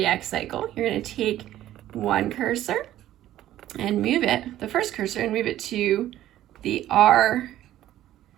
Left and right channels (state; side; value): quieter; left; 13.2 dB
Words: cycle, you're going to take one cursor and move it, the first cursor, and move it to the R